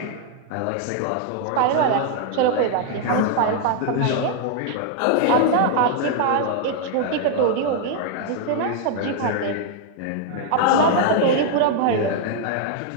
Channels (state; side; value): different; both; correlation 0.00